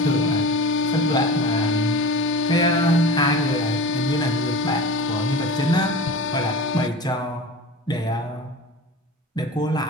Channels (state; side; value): normal; both; correlation 0.34